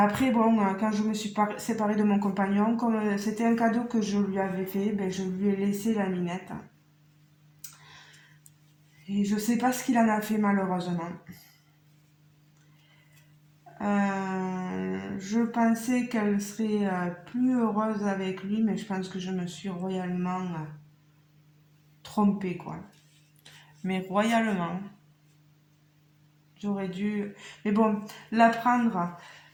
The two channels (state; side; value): identical; both; correlation 1.00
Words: bon, quand je me suis séparée de mon compagnon, comme c'était un cadeau que je lui avais fait, ben, je lui ai laissé la minette. Et je sais pas ce qu'il en a fait malheureusement. Je pensais qu'elle serait plus heureuse avec lui, mais je pense que je me suis royalement trompée, quoi. Mais royalement. J'aurais dû... Mais bon, la prendre,